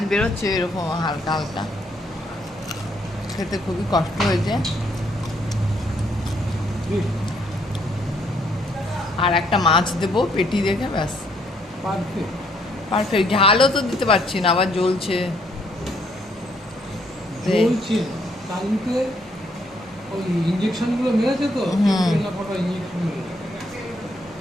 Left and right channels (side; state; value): both; normal; correlation 0.69